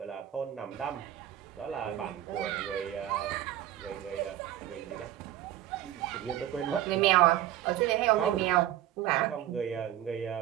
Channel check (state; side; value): quieter; left; 12.6 dB